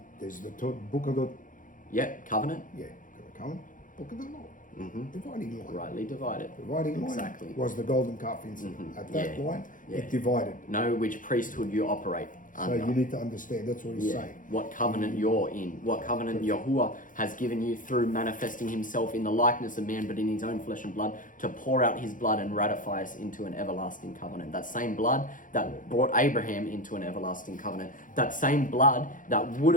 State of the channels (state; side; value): late; right; 0.38 ms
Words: there's the book of the Yep. Covenant. book of the law. Dividing line. Rightly divided. Dividing line Exactly. was the golden calf incident. At that Yeah. line, Yeah. it divided. Know which priesthood you operate So under. you need to understand. That's what he's Yeah. saying. What covenant you're in. What covenant Yahuwah has given you through manifesting himself in the likeness of man, but in his own flesh and blood, to pour out his blood and ratify us into an everlasting covenant. That same blood that brought Abraham into an everlasting covenant. That same blood that would